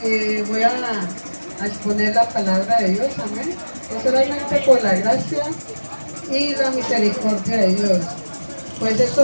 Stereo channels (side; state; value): both; inverted; correlation -1.00